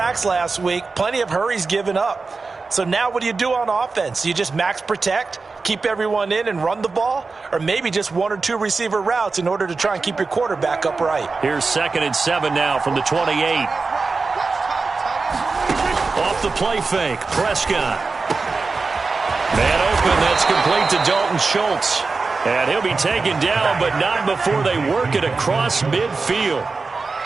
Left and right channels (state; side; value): quieter; left; 4.2 dB